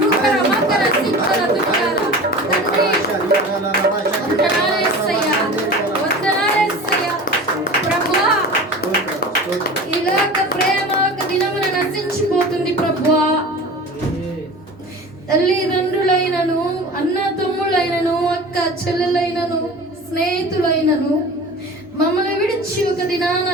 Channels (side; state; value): both; normal; correlation 0.36